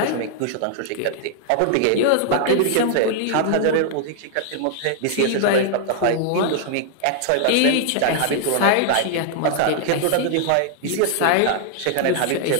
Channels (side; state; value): both; different; correlation 0.00